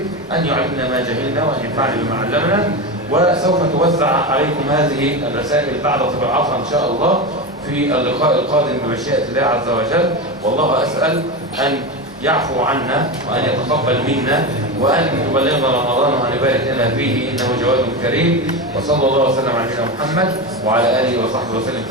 أن يعلمنا ما جهلنا وأن ينفعنا بما علمنا. وسوف توزع عليكم هذه الرسائل بعد طباعتها إن شاء الله في اللقاء القادم بمشيئة الله عز وجل. والله أسأل أن يعفو عنا وأن يتقبل منا وأن يبلغنا رمضان وأن يبارك لنا فيه، إنه جواد كريم. وصلى الله وسلم على نبينا محمد وعلى آله وصحبه وسلم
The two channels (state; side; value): normal; both; correlation 0.19